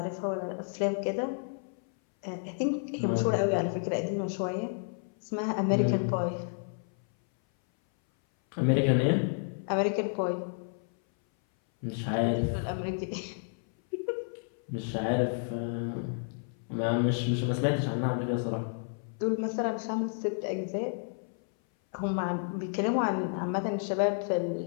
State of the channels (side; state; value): right; silent; 57 dB below the other